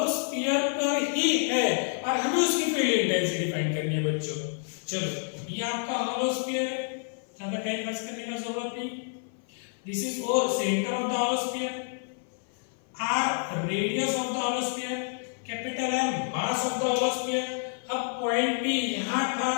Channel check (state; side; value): silent; right; 56 dB below the other